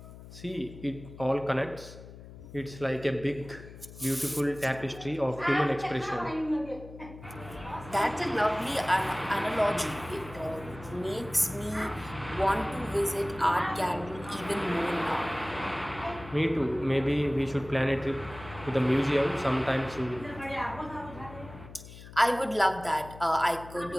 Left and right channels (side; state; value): left; noise; hum, 16 dB below the sound